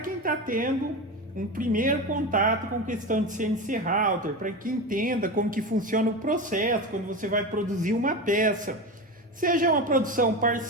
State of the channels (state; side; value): normal; both; correlation 0.23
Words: está tendo um primeiro contato com questão de CNC Router, para que entenda como que funciona o processo quando você vai produzir uma peça, seja uma produção